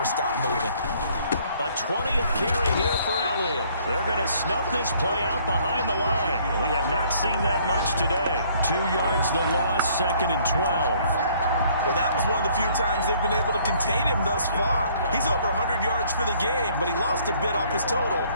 stop moving? A 20th carry here for Elliott. They're going to snuff this play out behind the line. We have not seen that much today. 2 yards the loss, 2nd and 12. Well, that was one of the few times they've been able to contain him thus far. He's over 100 yards for the game, but he lost a bit off his total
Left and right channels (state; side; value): inverted; both; correlation -0.61